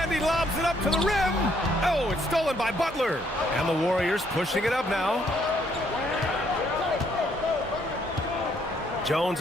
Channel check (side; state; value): both; normal; correlation 0.69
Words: he lobs it up to the rim. Oh, it's stolen by Butler. And the Warriors pushing it up now. Jones